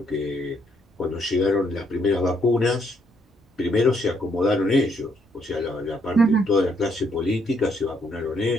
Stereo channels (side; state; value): both; normal; correlation 0.72